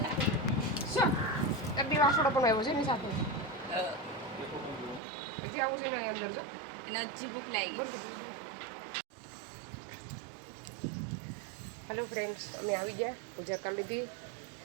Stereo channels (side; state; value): left; drops out; at 5.0 s